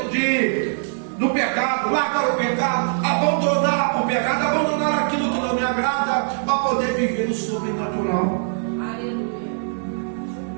quê? Do pecado, largar o pecado, abandonar o pecado, abandonar aquilo que não me agrada, para poder viver o sobrenatural.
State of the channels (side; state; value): left; silent; 64 dB below the other